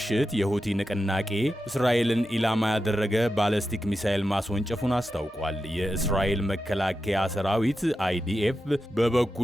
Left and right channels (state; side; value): normal; both; correlation 0.90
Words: የሁቲ ንቅናቄ እስራኤልን ኢላማ ያደረገ ባሊስቲክ ሚሳኤል ማስወንጨፉን አስታውቋል። የእስራኤል መከላከያ ሰራዊት IDF